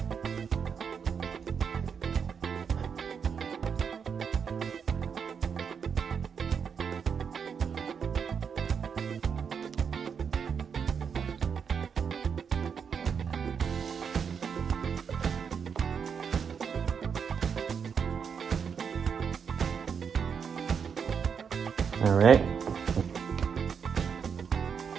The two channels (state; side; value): quieter; left; 6.7 dB